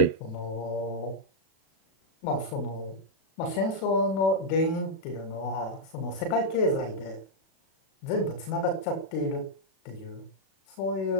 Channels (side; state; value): right; late; 37 ms